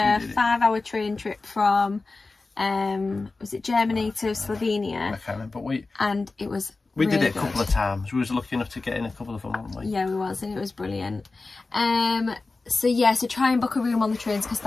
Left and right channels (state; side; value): quieter; right; 3.6 dB